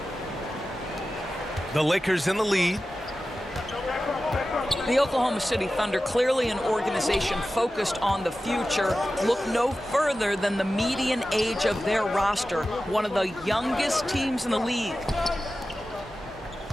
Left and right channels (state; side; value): normal; both; correlation 0.94